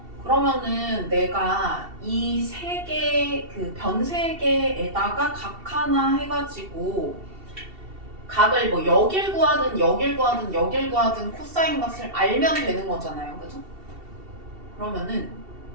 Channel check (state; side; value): late; left; 2.7 ms